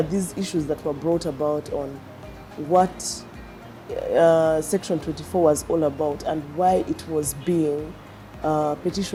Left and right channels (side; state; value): both; identical; correlation 1.00